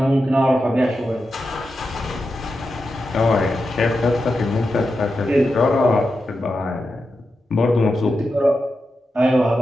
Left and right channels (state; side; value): normal; both; correlation 0.89